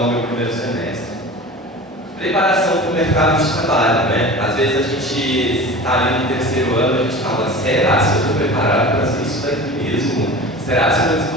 no meu primeiro semestre. Preparação para o mercado de trabalho, né? Às vezes a gente está ali no terceiro ano, a gente fala, será que eu estou preparado para fazer isso daqui mesmo? Será que eu vou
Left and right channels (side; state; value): both; normal; correlation 0.36